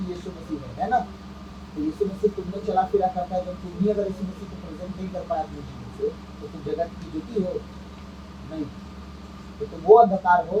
यीशु मसीह है ना। तो यीशु मसीह तुमने चला फिरा करता है, जब तुम ही अगर यीशु मसीह को प्रेजेंट नहीं कर पाया अपने जीवन से, तो तुम जगत की ज्योति हो नहीं। तो तुम वो अंधकार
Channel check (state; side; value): identical; both; correlation 1.00